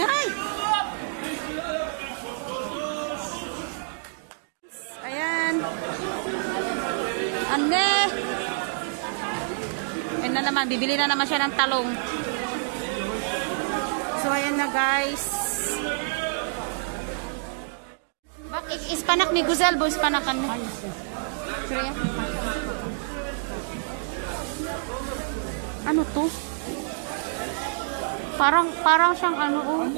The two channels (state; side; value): silent; left; digital silence